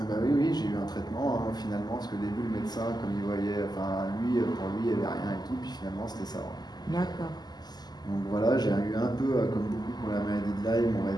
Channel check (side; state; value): right; late; 0.20 ms